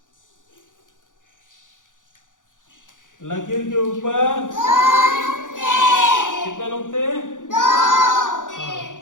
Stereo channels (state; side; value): late; right; 0.87 ms